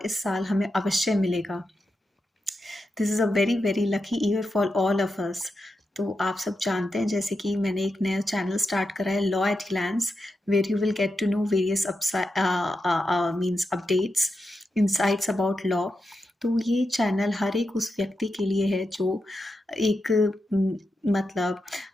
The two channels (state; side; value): normal; both; correlation 0.88